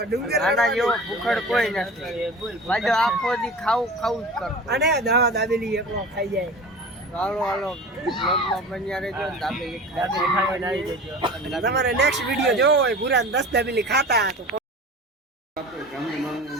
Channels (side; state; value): both; normal; correlation 0.37